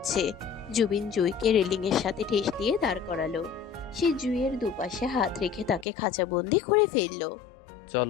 জুবিন জুইকে রেলিংয়ের সাথে ঠেস দিয়ে দাঁড় করালো। সে জুইয়ের দুপাশে হাত রেখে তাকে খাঁচাবন্দি করে ফেললো।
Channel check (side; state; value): right; drops out; at 5.9 s